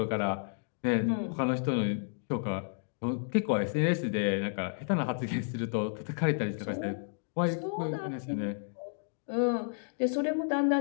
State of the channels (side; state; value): right; silent; digital silence